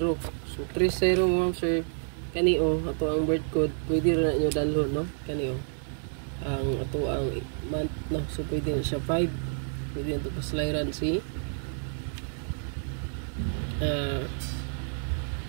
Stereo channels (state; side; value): silent; left; 58 dB below the other